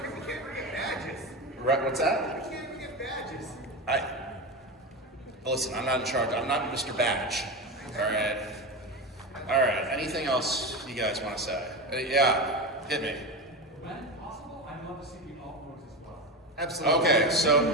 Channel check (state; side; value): normal; both; correlation 0.21